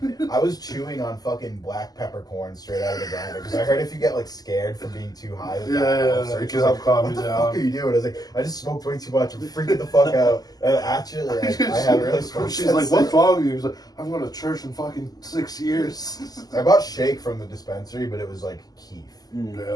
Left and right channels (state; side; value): late; right; 0.18 ms